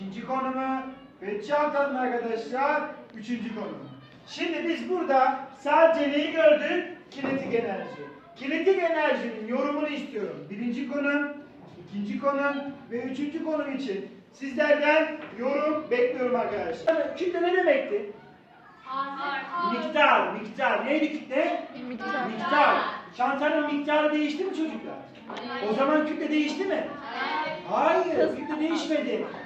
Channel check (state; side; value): identical; both; correlation 1.00